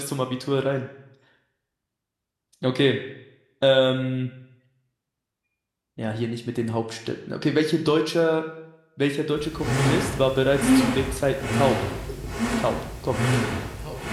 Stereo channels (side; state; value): both; identical; correlation 1.00